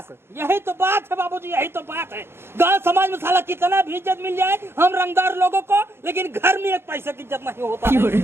यही तो बात है बाबूजी, यही तो बात है। गांव समाज में साला कितना भी इज्जत मिल जाए हम रंगदार लोगों को, लेकिन घर में एक पैसे की इज्जत नहीं होता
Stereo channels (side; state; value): left; late; 0.12 ms